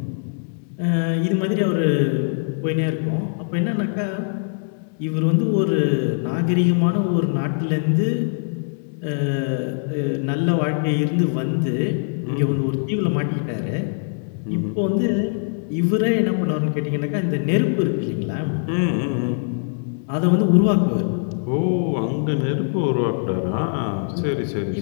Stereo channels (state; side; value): silent; right; digital silence